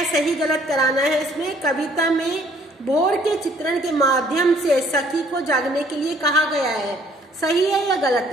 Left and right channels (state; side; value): normal; both; correlation 0.61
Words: सही गलत कराना है इसमें। कविता में भोर के चित्रण के माध्यम से सखी को जागने के लिए कहा गया है, सही है या गलत